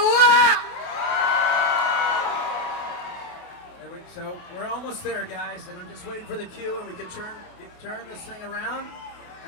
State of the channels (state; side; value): late; right; 28 ms